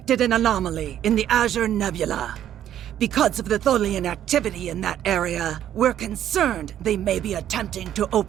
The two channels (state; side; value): quieter; left; 11.0 dB